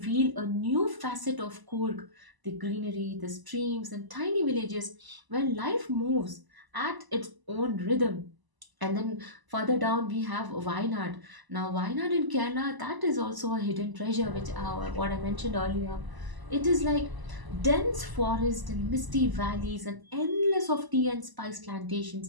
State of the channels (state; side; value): late; left; 1.0 ms